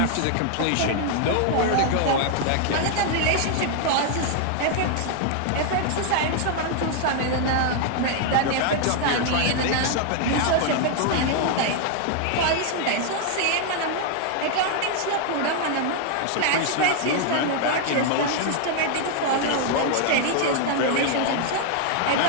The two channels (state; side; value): different; both; correlation 0.00